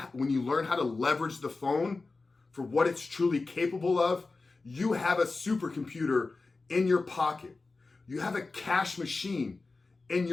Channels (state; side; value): quieter; right; 3.7 dB